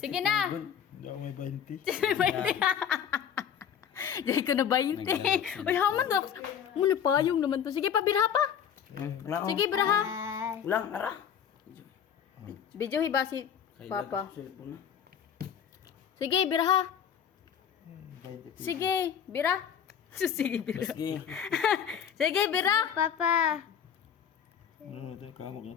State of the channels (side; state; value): right; quieter; 8.4 dB